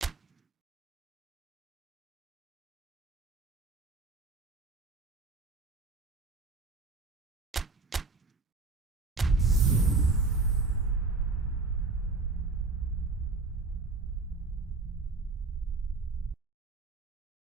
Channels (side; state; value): left; quieter; 3.7 dB